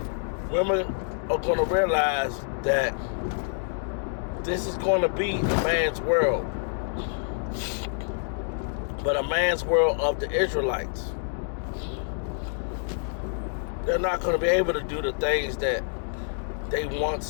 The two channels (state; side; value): silent; right; digital silence